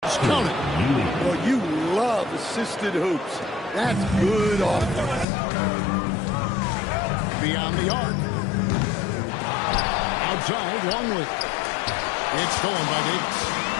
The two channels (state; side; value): drops out; right; at 5.2 s